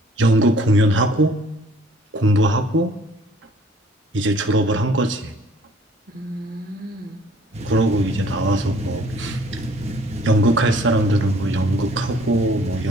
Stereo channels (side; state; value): both; normal; correlation 0.56